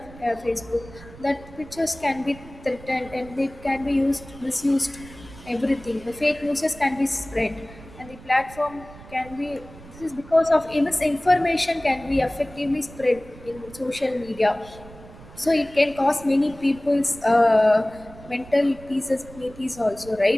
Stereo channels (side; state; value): right; noise; rumble, 19 dB below the sound